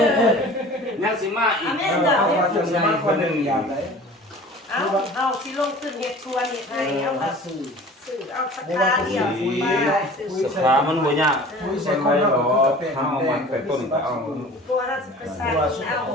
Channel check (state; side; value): normal; both; correlation 0.43